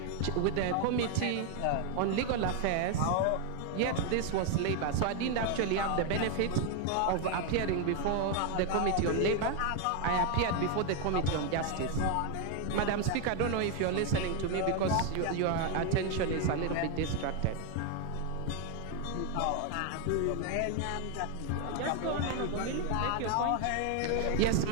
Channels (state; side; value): different; both; correlation 0.01